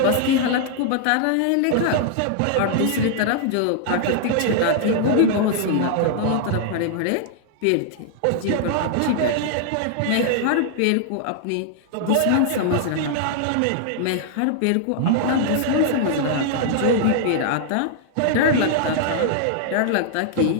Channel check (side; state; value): both; different; correlation -0.01